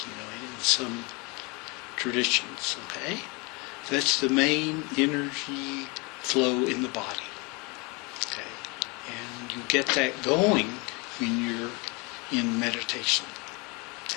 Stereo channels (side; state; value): right; quieter; 28.7 dB